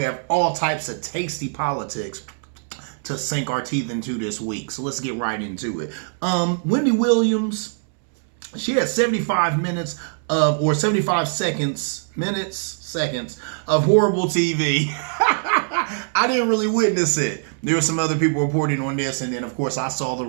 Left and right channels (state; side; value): silent; left; 63 dB below the other